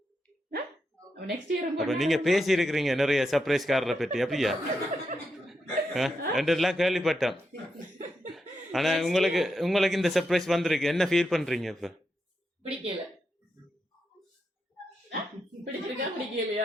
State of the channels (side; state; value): both; normal; correlation 0.84